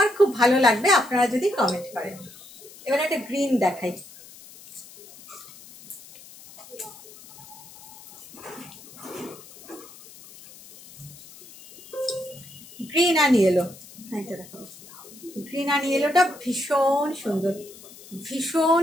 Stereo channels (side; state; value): left; noise; hiss, 20 dB below the sound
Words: খুব ভালো লাগবে আপনারা যদি কমেন্ট করেন। এবারে একটা গ্রিন দেখাই, গ্রিন অ্যান্ড ইয়েলো, এটা দেখো, গ্রিন অ্যান্ড ইয়েলোটা ভীষণ সুন্দর, ভীষণ